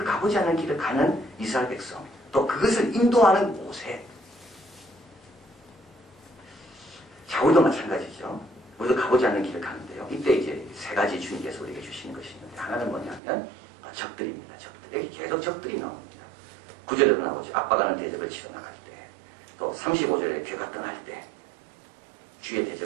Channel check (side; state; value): left; drops out; at 13.2 s